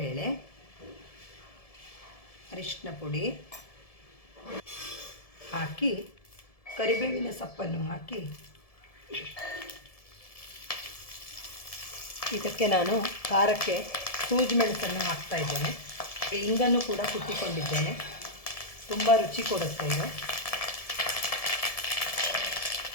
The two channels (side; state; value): right; late; 1.7 ms